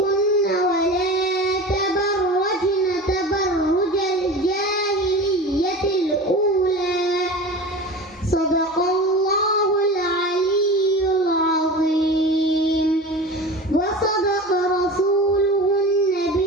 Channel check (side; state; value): both; normal; correlation 0.33